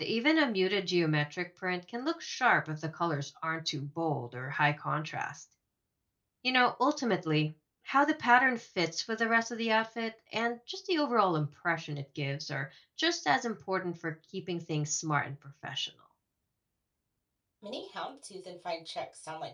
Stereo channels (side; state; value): both; identical; correlation 1.00